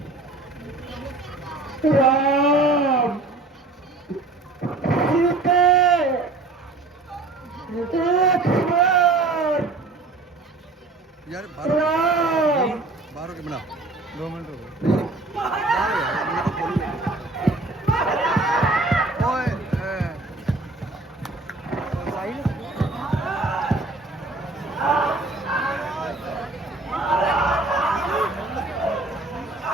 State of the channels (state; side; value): quieter; left; 3.2 dB